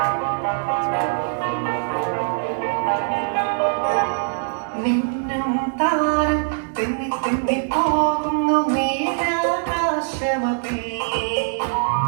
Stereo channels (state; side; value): silent; left; 64 dB below the other